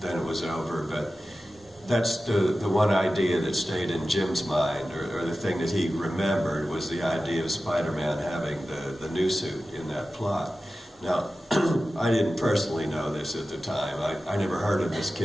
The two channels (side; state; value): both; normal; correlation 0.94